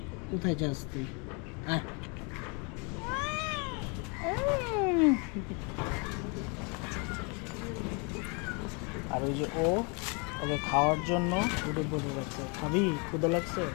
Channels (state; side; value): quieter; right; 33.5 dB